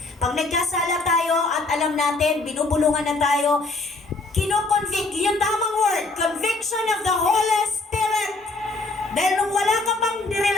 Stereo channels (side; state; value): right; quieter; 3.3 dB